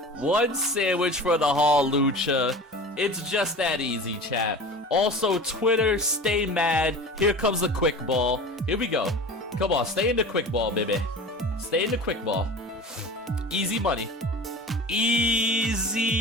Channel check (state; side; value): normal; both; correlation 0.35